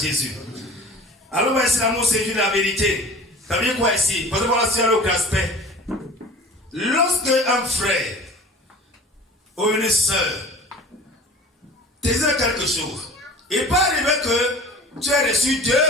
Alors, on va essayer l'amour, c'est juste la vérité. Ça veut dire quoi ici? Parce que voilà, c'est un autre aspect. Lorsque un frère ou une soeur te dit quelque chose, il peut arriver que tu as reçu deux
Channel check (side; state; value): both; normal; correlation 0.41